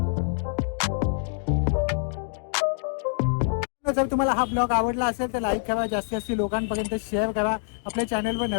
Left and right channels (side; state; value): right; silent; 61 dB below the other